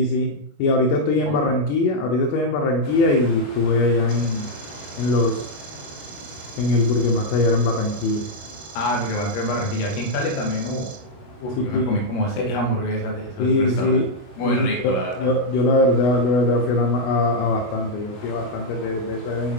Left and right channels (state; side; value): late; right; 21 ms